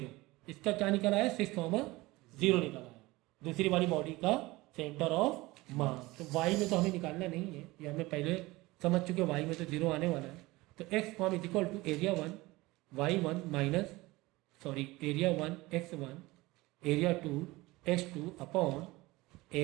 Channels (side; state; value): left; quieter; 20.7 dB